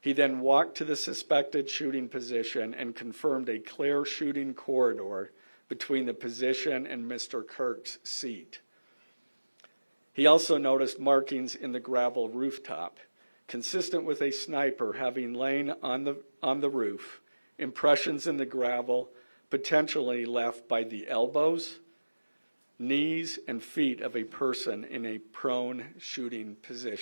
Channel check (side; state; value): both; inverted; correlation -1.00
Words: then walked to the suspected shooting position and confirmed a clear shooting corridor between the position and Mr. Kirk's seat. He also noticed markings in the gravel rooftop, consistent with a sniper having lain on the roof, impressions in the gravel potentially left by the elbows, knees, and feet of a person in a prone shooting